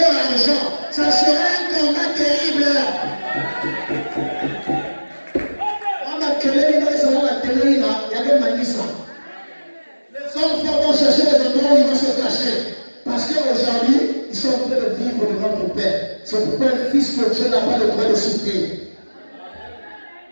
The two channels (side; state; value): both; inverted; correlation -1.00